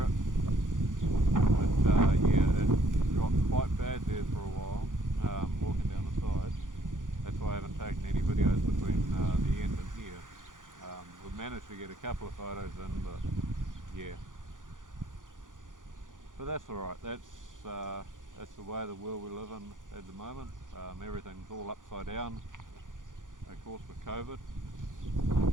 it, but yeah, it got quite bad there for a while, walking down the side. That's why I haven't taken any videos between the end and here. We've managed to get a couple of photos in, but yeah. But that's alright, that's the way the world we live in at the moment. Everything's all upside down, of course, with COVID.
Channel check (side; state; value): left; late; 0.88 ms